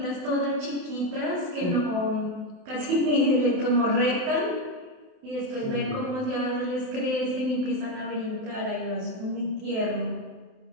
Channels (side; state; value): left; late; 28 ms